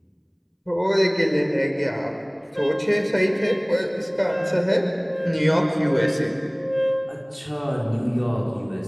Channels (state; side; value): identical; both; correlation 1.00